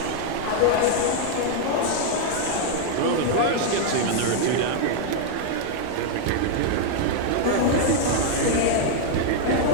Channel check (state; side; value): different; both; correlation 0.00